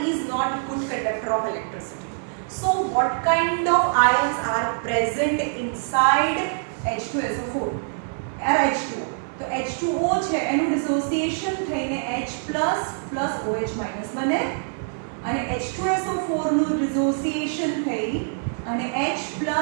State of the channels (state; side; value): silent; left; digital silence